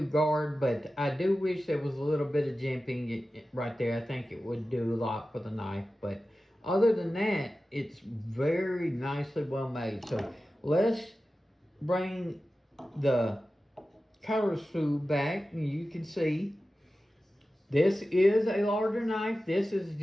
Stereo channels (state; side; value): normal; both; correlation 0.94